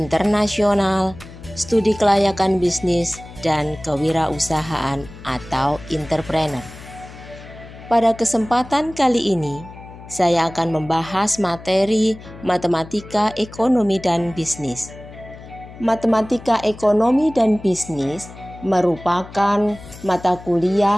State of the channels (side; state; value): left; noise; hum, 17 dB below the sound